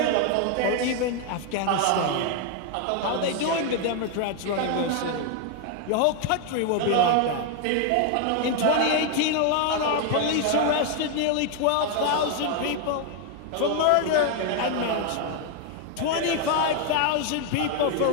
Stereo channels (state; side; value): different; both; correlation 0.01